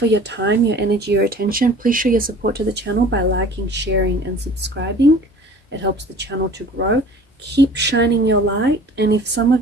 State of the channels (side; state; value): both; normal; correlation 0.46